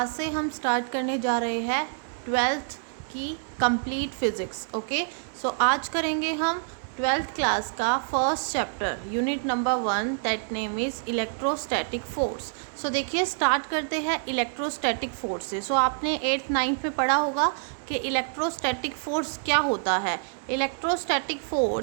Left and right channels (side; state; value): left; silent; digital silence